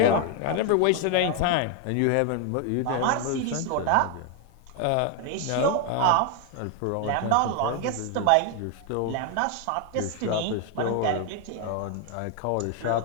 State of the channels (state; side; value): different; both; correlation 0.01